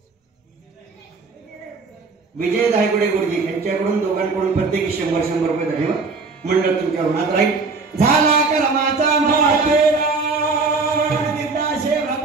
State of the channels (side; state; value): left; quieter; 4.2 dB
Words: विजय धायगुडे गुरुजी यांच्याकडून दोघांकडून प्रत्येकी 100 रुपये धन्यवाद. मंडळ तुमच्या ऋणात राहील. झाला कर्माचा मातेरा